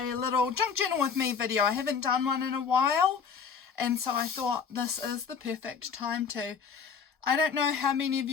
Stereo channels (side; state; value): right; quieter; 6.4 dB